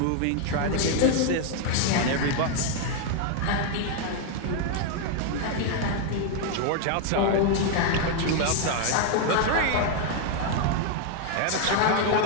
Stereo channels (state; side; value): different; both; correlation 0.01